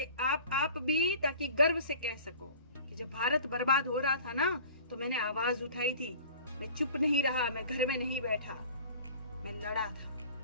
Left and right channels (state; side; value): inverted; both; correlation -0.46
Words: आप भी, ताकि गर्व से कह सको कि जब भारत बर्बाद हो रहा था ना, तो मैंने आवाज उठाई थी, मैं चुप नहीं रहा, मैं घर में नहीं बैठा, मैं लड़ा था।